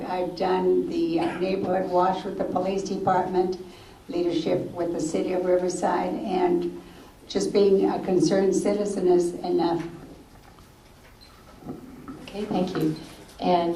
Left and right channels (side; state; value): both; identical; correlation 1.00